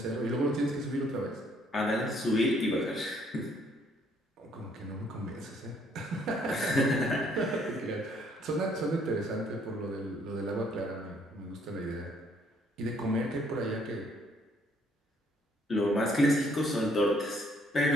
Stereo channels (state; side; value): normal; both; correlation 0.66